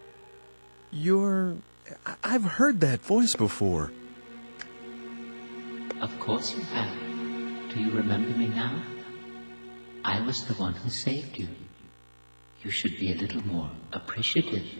I've heard that voice before. Of course you have. Do you remember me now? I was the one who saved you. You should be a little more appreciative.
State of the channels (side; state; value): both; inverted; correlation -1.00